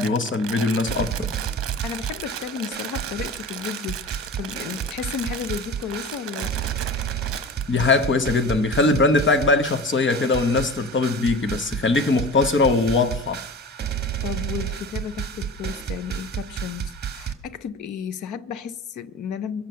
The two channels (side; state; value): both; normal; correlation 0.35